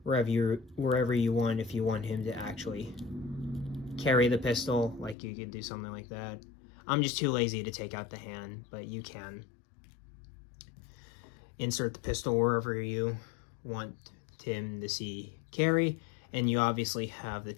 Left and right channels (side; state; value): right; drops out; at 5.2 s